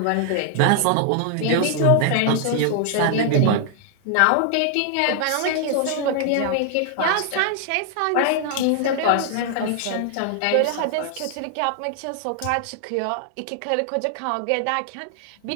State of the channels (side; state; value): both; different; correlation 0.00